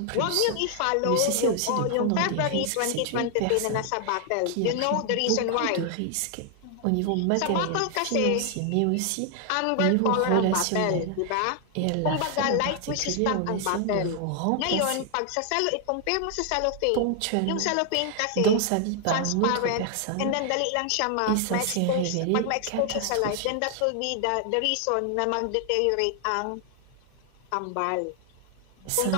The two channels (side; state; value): both; different; correlation 0.00